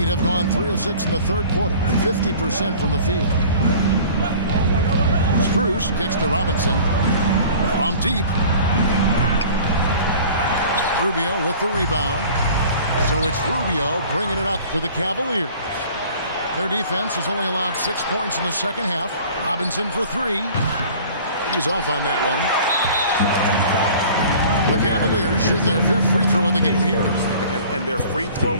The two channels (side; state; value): both; inverted; correlation -0.46